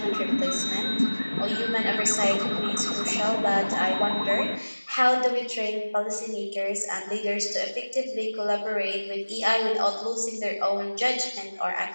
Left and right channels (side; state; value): both; inverted; correlation -1.00